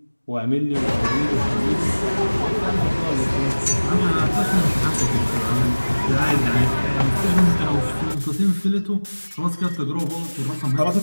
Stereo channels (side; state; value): both; inverted; correlation -1.00